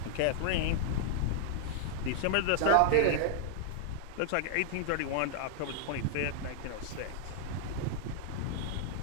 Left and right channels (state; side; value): different; both; correlation -0.01